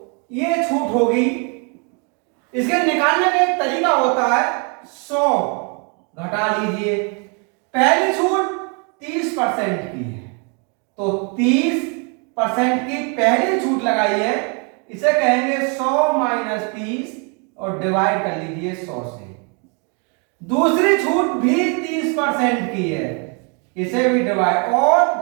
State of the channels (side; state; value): left; quieter; 36.0 dB